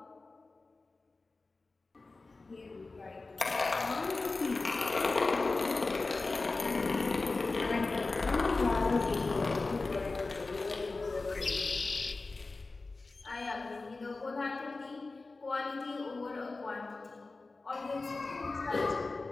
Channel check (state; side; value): quieter; right; 3.6 dB